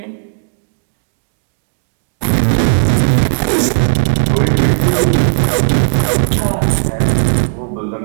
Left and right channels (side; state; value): left; silent; digital silence